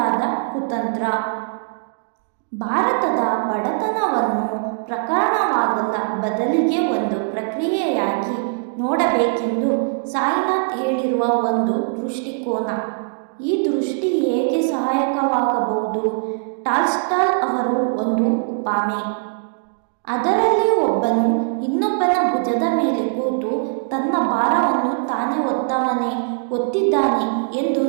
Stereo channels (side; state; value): left; silent; digital silence